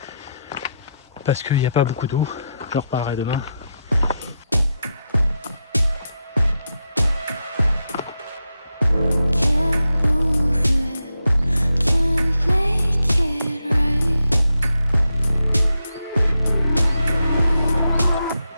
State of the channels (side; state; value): both; inverted; correlation -0.85